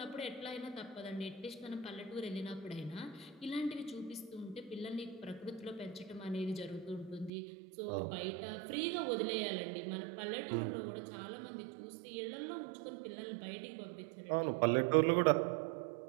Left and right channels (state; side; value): drops out; left; at 7.3 s